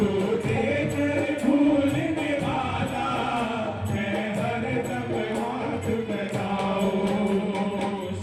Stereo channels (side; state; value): both; identical; correlation 1.00